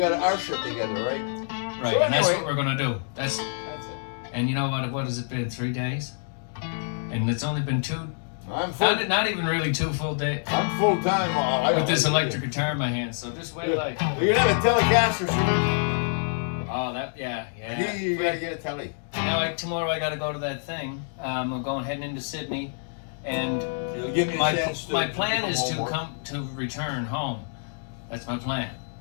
our shit together, right? Right, So and that's anyway. what we're gonna do. That's it. and you know what has it been? 3 days, and it's only been 2. I'm full. Not even really 2 full days I'm full time. with this electric guitar in my hand. So just wait, like, We're gonna have a Telecaster soon. oh that yeah. You gotta get a telly. Now tomorrow I gotta go to that thing. I'm heading into Sydney, and It'll give me a my chance to plan become is to homework. return home. That's my plan.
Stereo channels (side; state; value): right; silent; digital silence